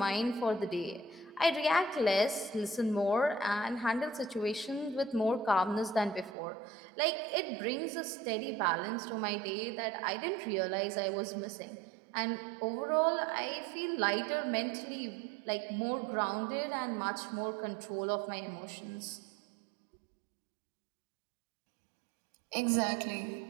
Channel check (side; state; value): left; drops out; at 6.4 s